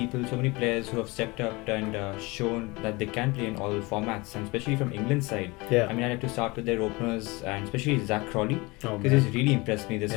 so many players who have stepped up and shown that they can play in all formats, and especially from England's side. Yeah. I mean, I'd like to start with their openers, and especially Zach Crawley, Oh, because he's really impressed me this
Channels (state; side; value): quieter; right; 24.4 dB